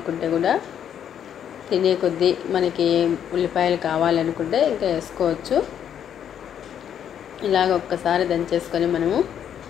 కూడా తినే కొద్దీ మనకి ఉల్లిపాయలు కావాలనుకుంటే ఇంకా వేసుకోవచ్చు. ఇలాగ ఒక్కసారి దంచేసుకొని మనము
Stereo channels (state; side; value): quieter; right; 9.2 dB